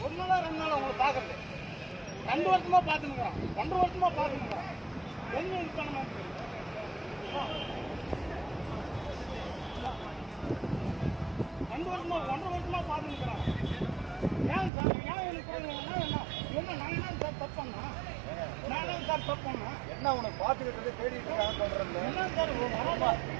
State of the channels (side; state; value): left; drops out; at 14.7 s